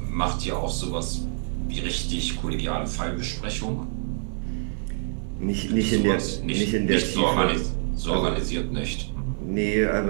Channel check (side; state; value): left; silent; digital silence